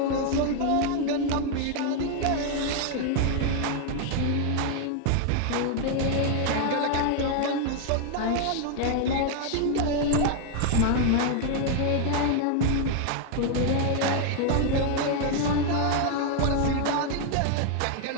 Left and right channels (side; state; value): both; different; correlation 0.00